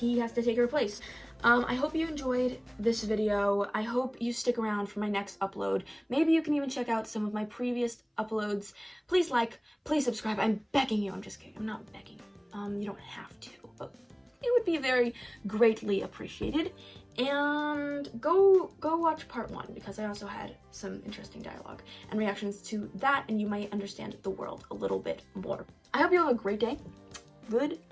has to take her place. I hope you enjoyed this video. I hope you stick around for my next upload. Maybe you can even check out some of my previous uploads. Please like, please subscribe. I'm begging you. I'm just kidding. I'm not begging. You don't have to, but it would be very greatly appreciated. And go watch part 1, because I also had some interesting dialogue and reactions to that, and you might understand the world a little bit more. I hope you have a great day.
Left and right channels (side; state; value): both; identical; correlation 1.00